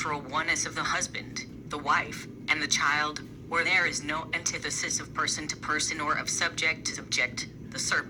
oneness of the husband, the wife, and the child, where there is no antithesis of person to person or of subject to subject, the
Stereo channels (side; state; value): both; identical; correlation 1.00